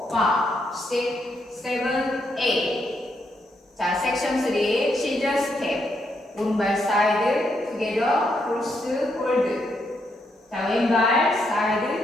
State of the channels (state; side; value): normal; both; correlation 0.78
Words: 6, 7, 8. 자, 섹션 3 시저 스텝 오른발 사이드 투게더 크로스 홀드. 자, 왼발